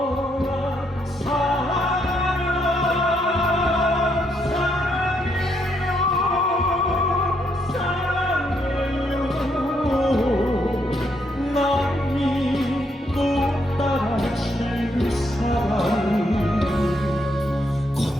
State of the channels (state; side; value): normal; both; correlation 0.75